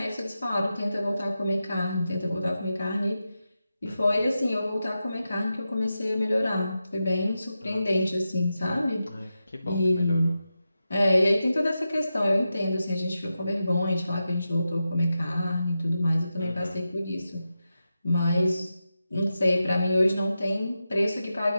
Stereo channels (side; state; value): both; inverted; correlation -0.90